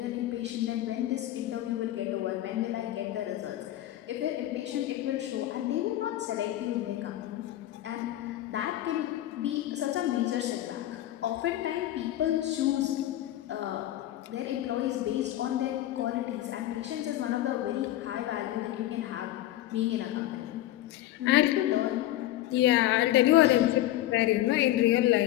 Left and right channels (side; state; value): right; quieter; 14.4 dB